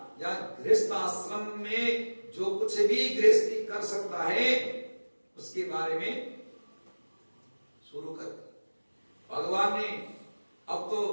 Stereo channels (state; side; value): inverted; both; correlation -1.00